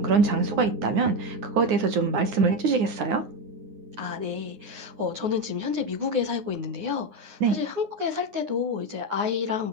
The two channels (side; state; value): left; late; 9.6 ms